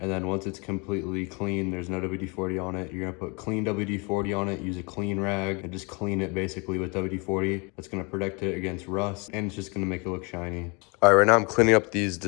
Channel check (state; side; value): quieter; right; 30.5 dB